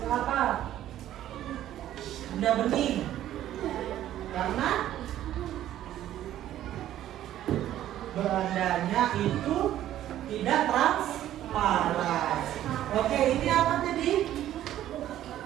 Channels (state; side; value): quieter; left; 12.5 dB